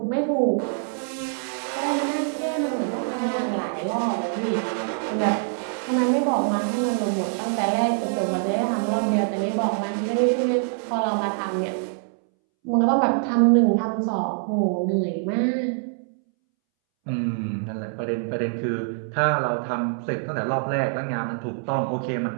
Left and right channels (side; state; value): left; silent; 62 dB below the other